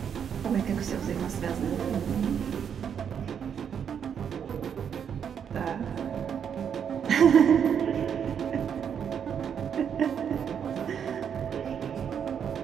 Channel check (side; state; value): left; quieter; 7.9 dB